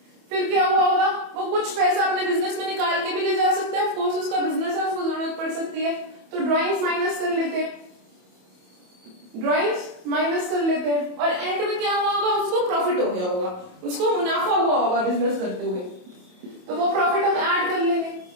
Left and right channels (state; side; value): late; left; 27 ms